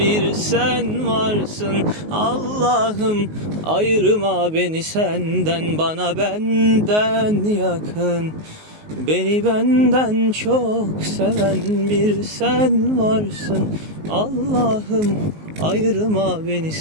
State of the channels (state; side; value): late; left; 19 ms